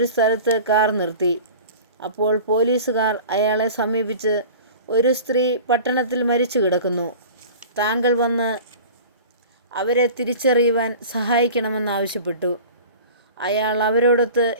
സ്ഥലത്ത് കാർ നിർത്തി. അപ്പോൾ പോലീസുകാർ അയാളെ സമീപിച്ച്, ഒരു സ്ത്രീ പട്ടണത്തിൽ മരിച്ചു കിടക്കുന്നു, താങ്കൾ വന്ന് അവരെ തിരിച്ചറിയുവാൻ സഹായിക്കണമെന്നാവശ്യപ്പെട്ടു. അയാൾ അവരോടൊത്ത്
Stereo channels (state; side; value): inverted; both; correlation -0.39